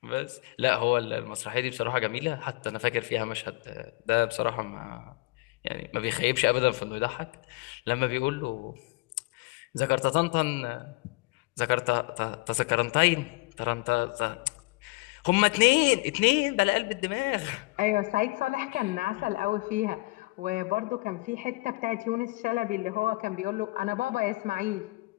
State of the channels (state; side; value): quieter; right; 23.9 dB